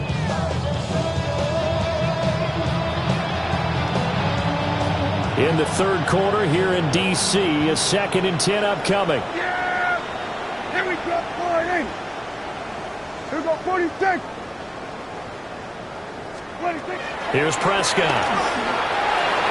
In the third quarter here in D.C., a second and 10 upcoming. Yeah! Here we go, 40. Here we go, 46. 26. Here's Prescott.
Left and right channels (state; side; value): identical; both; correlation 1.00